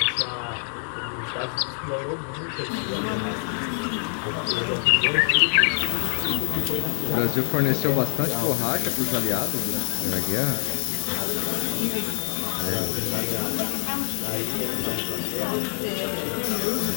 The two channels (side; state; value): right; silent; digital silence